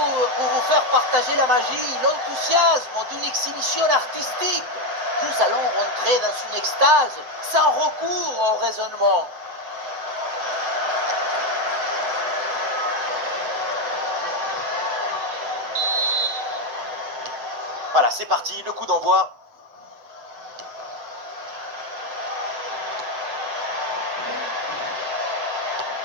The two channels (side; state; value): left; late; 7.7 ms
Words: pour vous faire partager la magie, l'enthousiasme d'une exhibition artistique. Nous allons rentrer dans une extase sans recours au raisonnement. Voilà, c'est parti, le coup d'envoi.